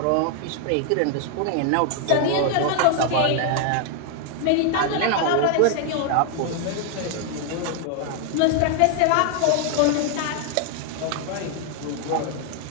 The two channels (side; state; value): both; different; correlation 0.00